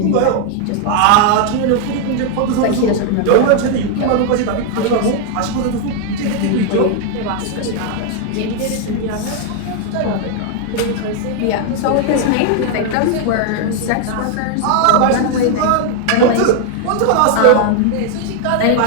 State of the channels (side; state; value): both; different; correlation 0.00